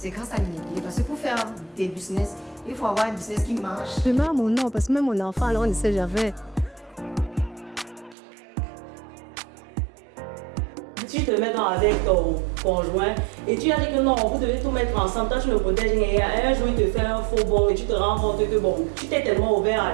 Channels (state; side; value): drops out; left; at 8.2 s